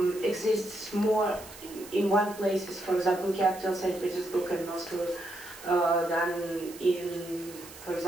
exists more in one place, for example, capital St. Petersburg and Moscow, than in, for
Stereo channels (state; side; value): noise; right; hiss, 17 dB below the sound